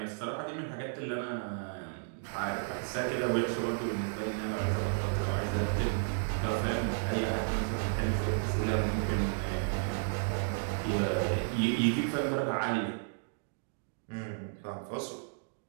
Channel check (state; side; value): silent; left; digital silence